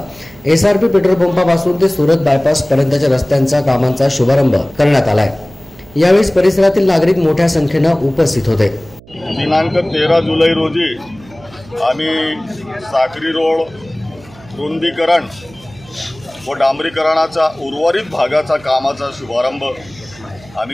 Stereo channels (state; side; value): noise; right; hum, 23 dB below the sound